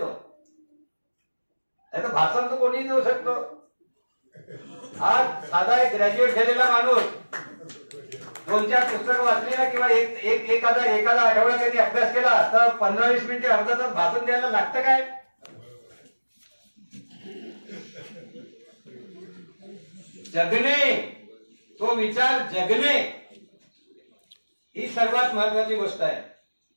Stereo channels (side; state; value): both; inverted; correlation -1.00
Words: नाही तर भाषण तर कोणीही देऊ शकतो. आज साधा एक ग्रॅज्युएट झालेला माणूस 2-4 पुस्तकं वाचली ना, किंवा एखादा आठवडा त्यांनी अभ्यास केला तर 15-20 मिनिटे, अर्धा तास भाषण द्यायला लागतं काय? जगणे, तो विचार जगणे ही सर्वात महत्वाची गोष्ट आहे.